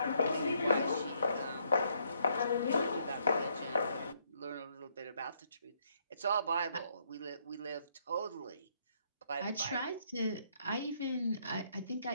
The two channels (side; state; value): both; inverted; correlation -0.72